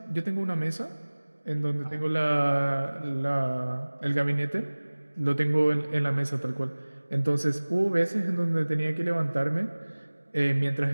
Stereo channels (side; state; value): both; inverted; correlation -1.00